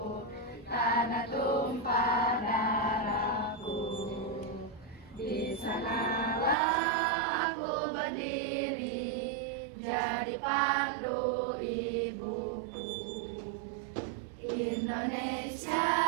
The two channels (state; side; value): drops out; left; at 6.6 s